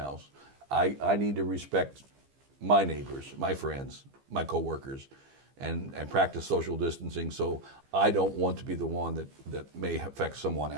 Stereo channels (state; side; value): late; left; 15 ms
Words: I need to respect my neighbors, my friends, my coworkers, and practice social distancing, so I don't want to be the one that may affect someone